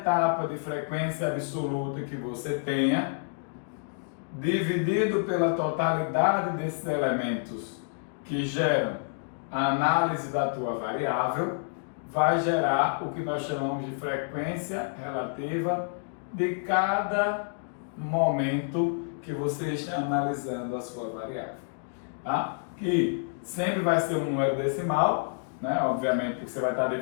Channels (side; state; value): right; silent; digital silence